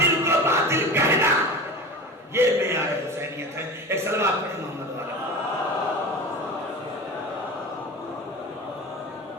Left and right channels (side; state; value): both; normal; correlation 0.31